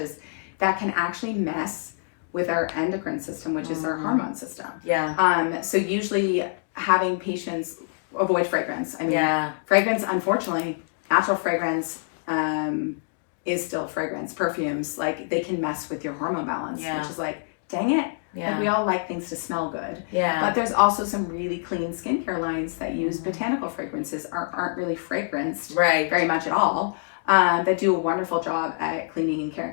that can actually mess with our endocrine system, which is our hormone system. Yeah. So usually having patients avoid fragrance. I mean, fragrance, unfortunately, natural fragrance is still fragrance. Perfumes, like, they can mess with your hormone balance, which is like, dang it. Like, we all like things to smell good. But there's also some really clean skincare lines that use botanical fragrances, aren't really fragranced very much at all, that do a wonderful job at cleaning and caring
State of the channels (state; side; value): silent; right; digital silence